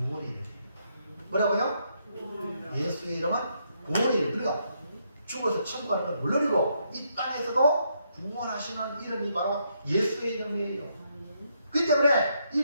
이름. 뭐라고요? 예수의 이름은 구원의 이름. 그러니까 죽어서 천국 가는 걸 물론이고 이 땅에서도 구원하시는 이름이 바로 예수의 이름이에요. 그렇기 때문에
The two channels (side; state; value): both; inverted; correlation -0.76